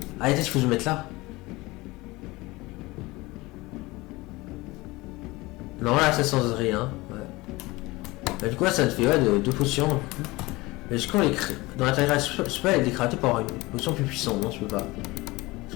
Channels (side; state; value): right; quieter; 21.5 dB